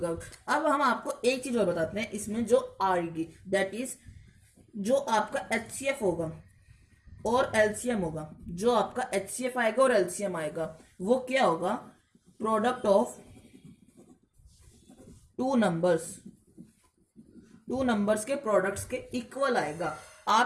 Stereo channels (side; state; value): both; identical; correlation 1.00